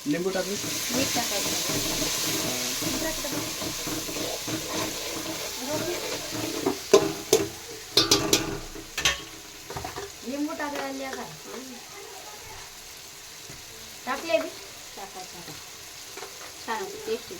लिंबू टाकली. मीठ टाकायचं. लिंबू टाकायला काय टाकले बी टाकायचं. छान होते, टेस्ट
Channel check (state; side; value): identical; both; correlation 1.00